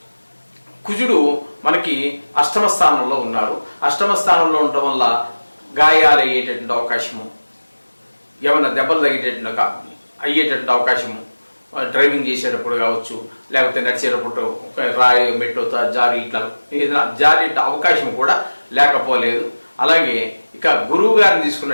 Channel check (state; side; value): inverted; both; correlation -1.00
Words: కుజుడు మనకి 8వ స్థానంలో ఉన్నారు. 8వ స్థానంలో ఉండటం వల్ల గాయాలు అయ్యేటటువంటి అవకాశము, ఏమైనా దెబ్బలు అయ్యేటటువంటి అవకాశము, డ్రైవింగ్ చేసేటప్పుడు కావచ్చు, లేకపోతే నడిచేటప్పుడు రాయి మెట్టు జారి ఇట్లా ఏదైనా జారి అవకాశం కూడా లేకపోలేదు. అలాగే ఇక గురువు గారిని